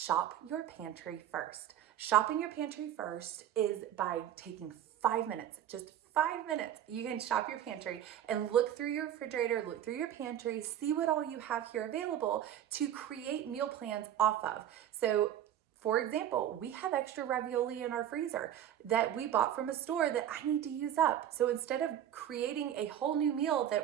your pantry first. Shopping your pantry first is by taking 5 minutes, just 5 minutes. You can shop your pantry and look through your refrigerator, look through your pantry, see what all you have here available to create meal plans off of. So for example, we have extra ravioli in our freezer that we bought from a store that I need to use up. So instead of creating a whole new meal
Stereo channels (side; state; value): left; quieter; 10.7 dB